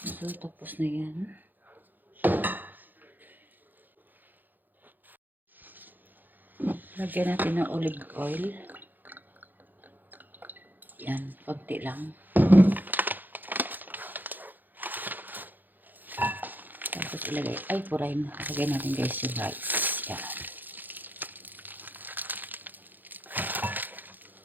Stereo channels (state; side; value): late; left; 0.087 ms